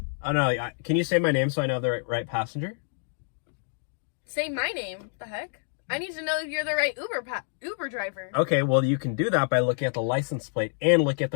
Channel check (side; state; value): right; silent; digital silence